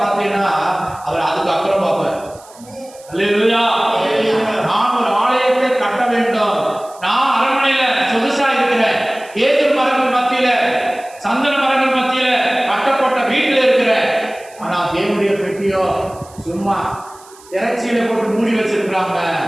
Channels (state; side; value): noise; right; hiss, 24 dB below the sound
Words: பார்த்தீங்கன்னா அவர் அதுக்கு அப்புறம் பார்ப்பார். அல்லேலூயா. நான் ஒரு ஆலயத்தை கட்ட வேண்டும், நான் அரண்மனையில சொகுசா இருக்கிறேன், ஏதர் மரங்கள் மத்தியில, சந்தன மரங்கள் மத்தியில கட்டப்பட்ட வீட்டில் இருக்கிறேன். ஆனா தேவனுடைய பெட்டியோ சும்மா இறைச்சியில போட்டு மூடி வச்சிருக்கிறாங்க.